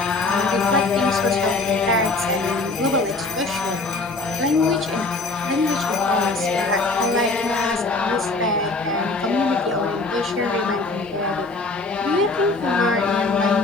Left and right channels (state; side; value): quieter; right; 3.4 dB